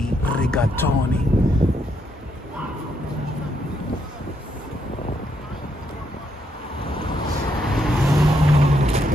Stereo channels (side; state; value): both; normal; correlation 0.77